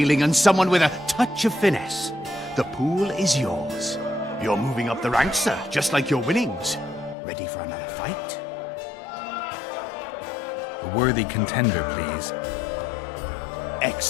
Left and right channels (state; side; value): drops out; right; at 7.2 s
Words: and someone with a touch of finesse. The pool is yours. You're moving up the ranks, sir, just like your winnings. Ready for another fight? A worthy contender, please.